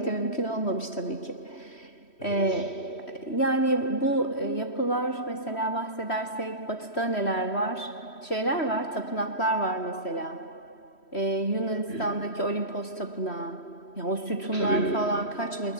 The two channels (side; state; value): right; late; 3.1 ms